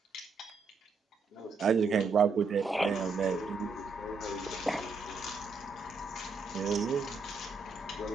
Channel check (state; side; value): quieter; left; 4.3 dB